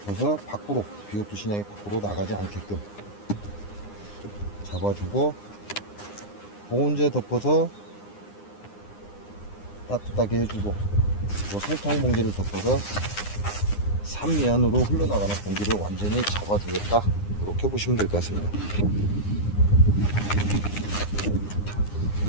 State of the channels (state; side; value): late; right; 9.8 ms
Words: 밖으로, BO2 신약이 밖으로 나가지 않게끔 잡아주고, 보온제 덮어서 따뜻하게 해주고, 그리고 설탕 봉지를 덮어서 3면으로 흘러나가는 공기를 완전히 잡아주겠다. 이렇게 보시면 될 것 같습니다.